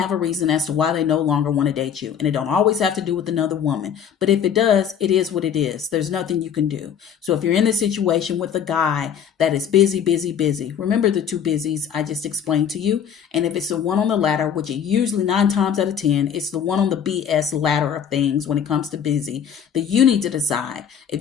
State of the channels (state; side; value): quieter; right; 8.2 dB